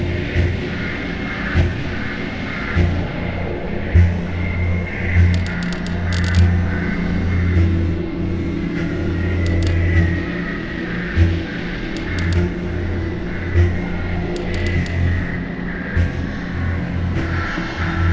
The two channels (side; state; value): both; identical; correlation 1.00